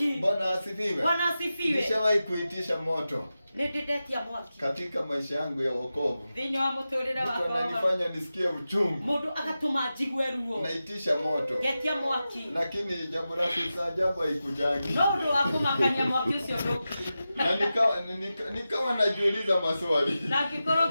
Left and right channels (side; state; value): both; inverted; correlation -0.93